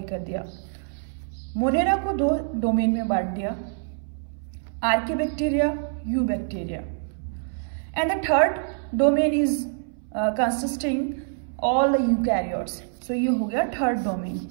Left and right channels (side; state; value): left; silent; 61 dB below the other